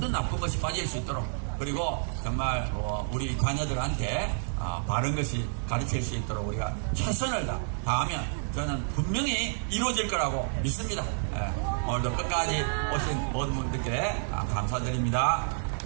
나쁜 것이 빠질 수 있도록 그리고 정말 우리 자녀들한테 바른 것이 가르칠 수 있도록 우리가 최선을 다하면 저는 분명히 이루어질 거라고 믿습니다. 예, 오늘도 끝까지 오신 모든 분들께 감사드립니다.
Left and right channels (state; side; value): silent; left; digital silence